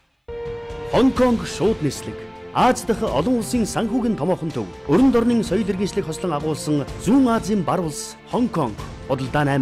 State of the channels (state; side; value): identical; both; correlation 1.00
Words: Хонконг шууд нислэг. Аз дахь олон улсын санхүүгийн томоохон төв. Өрөнд орны соёл иргэншлийг хослон агуулсан Зүүн Азийн бар улс Хонконг. Бодлоо